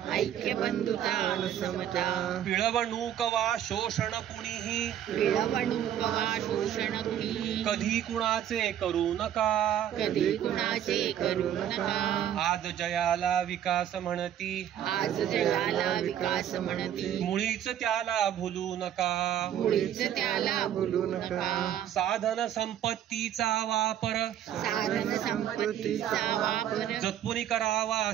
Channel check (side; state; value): left; quieter; 10.5 dB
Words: ऐक्य बंधुता आणि समता पिळवणूक वा शोषण कुणीही पिळवणूक वा शोषण कुणी कधी कुणाचे करू नका कधी कुणाचे करू नका आज जयाला विकास म्हणती आज जगाला विकास म्हणती मुळीच त्याला भुलू नका मुळीच त्याला भुलू नका साधन संपत्तीचा वापर साधन संपत्तीचा वापर जपून करावा